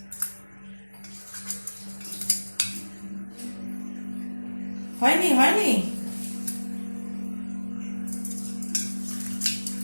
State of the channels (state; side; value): inverted; both; correlation -1.00